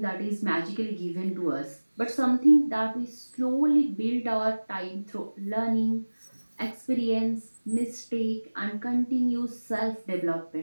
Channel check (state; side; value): inverted; both; correlation -1.00